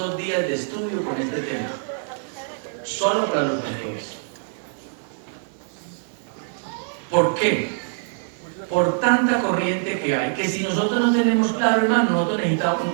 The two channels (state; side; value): silent; left; digital silence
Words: días de estudio con este tema. Solo para los pastores. ¿Por qué? Por tanta corriente que hay, que si nosotros no tenemos claro, hermano, nosotros